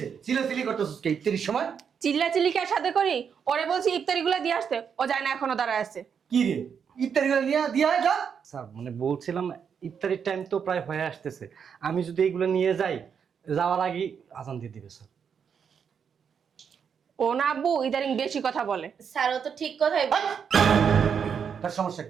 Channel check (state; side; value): quieter; left; 7.1 dB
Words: চিলাচিলি করতেছিস কে ইত্যাদির সময় চিল্লা চিল্লিকার সাথে করি ওরে বলছি ইফতারিগুলা দিয়ে আসতে ও যায় না এখনো দাঁড়ায় আছে কি রে ইত্যাদিগুলো নিয়ে দিয়া যা স্যার মানে বলছিলাম ইফতারির টাইম তো প্রায় হয়ে আসতেছে, আমি যদি এইগুলো নিয়ে যাই যাওয়ার আগেই আজান দিয়ে দিবে স্যার। ও না আব্বু ইদারিং বেশি কথা বলে স্যার ও তো ঠিক কথাই বলে। তার সমস্যা